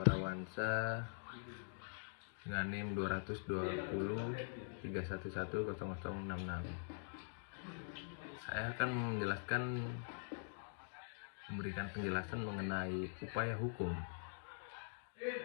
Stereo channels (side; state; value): right; silent; digital silence